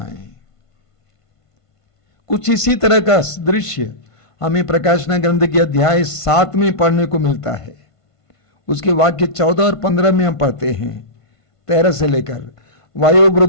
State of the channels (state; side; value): late; right; 1.5 ms